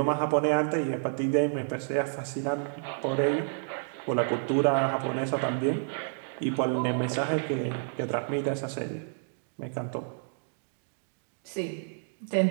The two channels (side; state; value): left; silent; digital silence